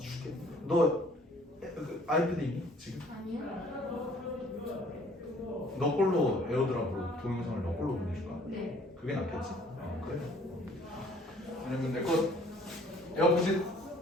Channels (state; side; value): normal; both; correlation 0.57